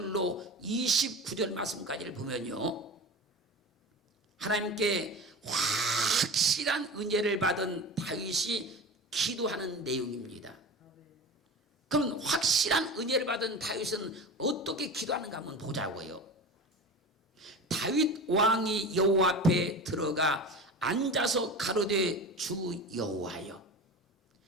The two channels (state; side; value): normal; both; correlation 0.31